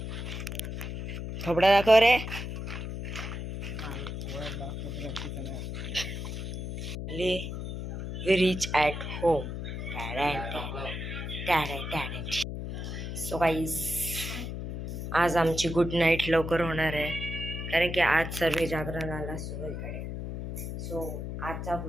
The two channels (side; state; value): left; noise; hum, 5 dB below the sound